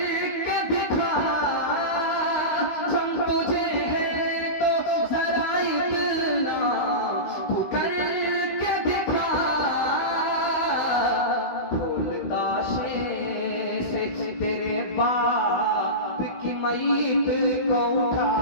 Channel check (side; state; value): right; late; 16 ms